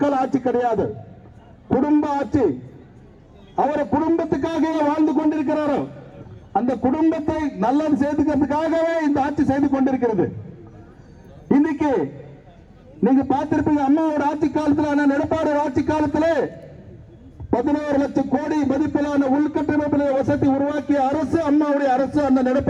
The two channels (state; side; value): identical; both; correlation 1.00